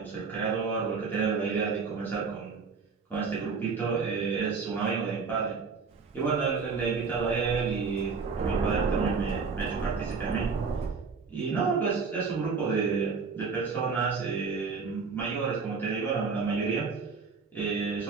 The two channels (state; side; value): quieter; left; 5.0 dB